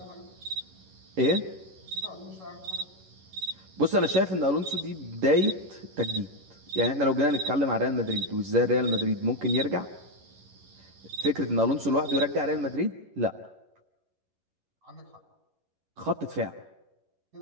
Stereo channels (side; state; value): left; late; 11 ms